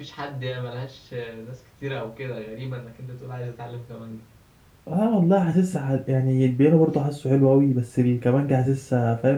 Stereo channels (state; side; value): identical; both; correlation 1.00